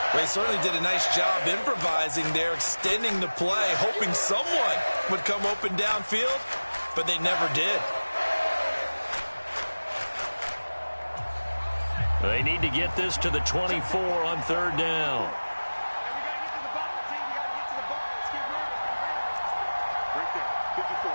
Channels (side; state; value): both; inverted; correlation -1.00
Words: They certainly did a nice job improvising there, extending the play, hoping someone would come open downfield, but they never did. They need to get this to the 24 on 3rd down.